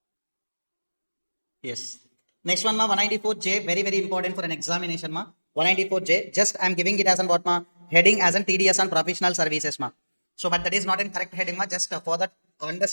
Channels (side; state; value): both; inverted; correlation -1.00